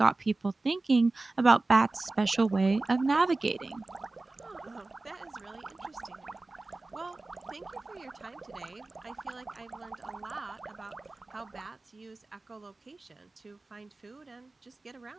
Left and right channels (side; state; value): left; quieter; 3.2 dB